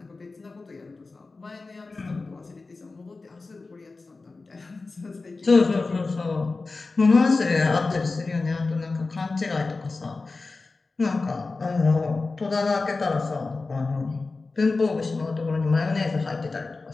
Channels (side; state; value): right; quieter; 3.8 dB